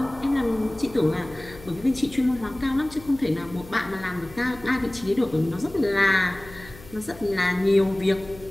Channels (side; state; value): left; noise; hum, 19 dB below the sound